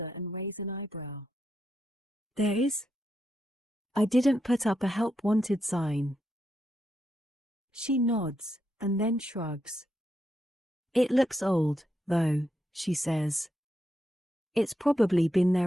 and raise an eyebrow. There is? I didn't put up a help wanted sign. She nods, and then shrugs. It looks old, though, she says. It's probably been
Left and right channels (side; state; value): both; normal; correlation 0.83